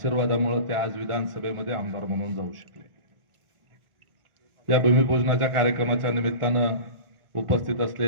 ते आज विधानसभेमध्ये आमदार म्हणून जाऊ शकले. या भूमिपूजनाच्या कार्यक्रमाच्या निमित्तानं उपस्थित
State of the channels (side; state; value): left; late; 1.4 ms